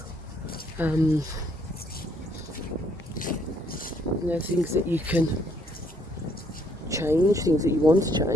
You know, things that you can change, things that you want to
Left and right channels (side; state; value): both; normal; correlation 0.68